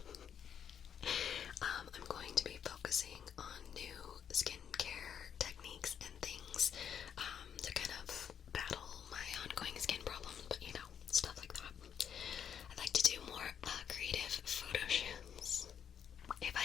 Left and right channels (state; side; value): quieter; right; 8.3 dB